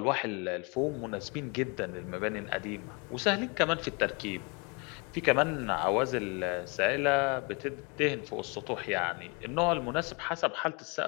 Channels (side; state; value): right; quieter; 31.1 dB